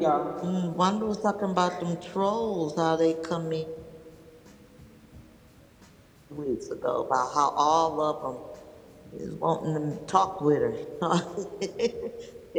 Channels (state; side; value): identical; both; correlation 1.00